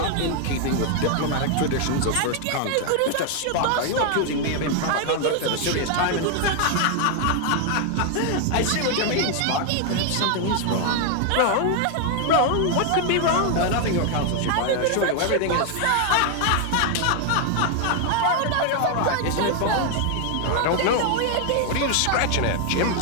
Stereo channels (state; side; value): different; both; correlation 0.00